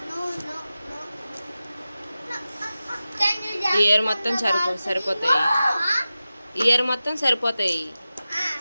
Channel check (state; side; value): inverted; both; correlation -0.95